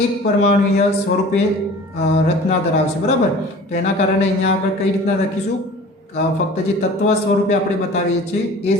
એક પરમાણુય સ્વરૂપે રચના ધરાવશે. બરાબર. તો એના કારણે અહીંયા આગળ કઈ રીતના લખીશું? ફક્ત જે તત્વ સ્વરૂપે આપણે બતાવીએ છીએ એ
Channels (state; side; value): normal; both; correlation 0.43